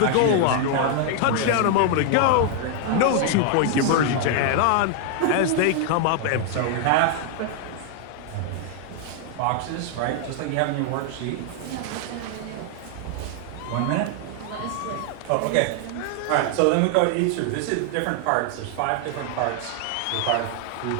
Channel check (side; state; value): both; different; correlation 0.00